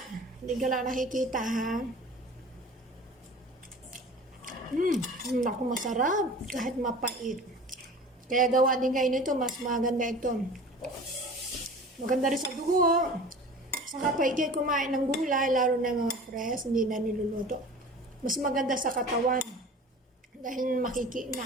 Hindi ka lang nakikita, ha? Naku, masarap. Kahit mapait. Kaya gawa din kayo nito, mas maganda ito. Maganda rin sa dugo. Saka pa ikay kumain ng gulay, lalo na mga fresh, hindi na niluluto. Mas maganda sa katawan. Dahil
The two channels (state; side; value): normal; both; correlation 0.40